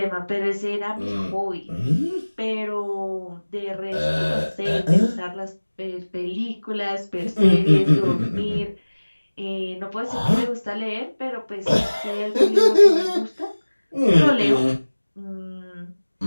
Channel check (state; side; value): inverted; both; correlation -1.00